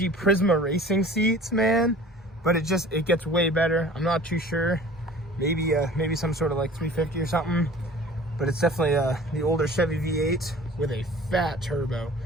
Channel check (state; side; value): normal; both; correlation 0.45